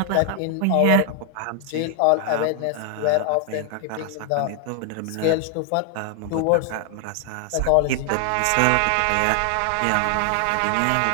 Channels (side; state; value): both; different; correlation 0.00